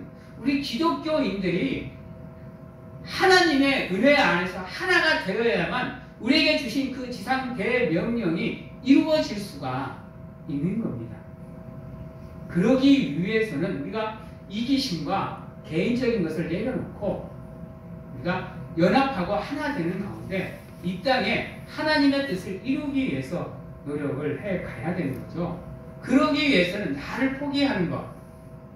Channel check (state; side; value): identical; both; correlation 1.00